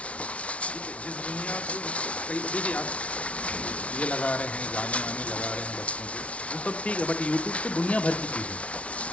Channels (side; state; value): right; late; 0.063 ms